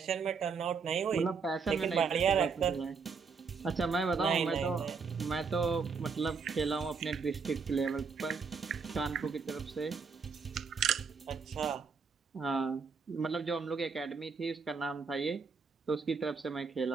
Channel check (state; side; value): quieter; left; 5.3 dB